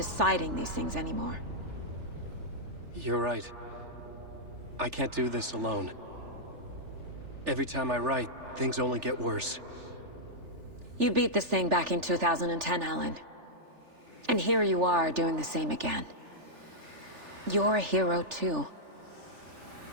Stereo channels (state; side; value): late; left; 3.4 ms